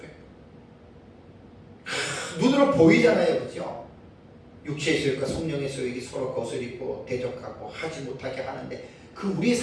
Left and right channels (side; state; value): both; identical; correlation 1.00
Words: 번. 눈으로 보이잖아요. 그죠? 육체의 소욕과 성령의 소욕이 서로 거스리고 대적하고 하지 못하게 하는데 그 우리의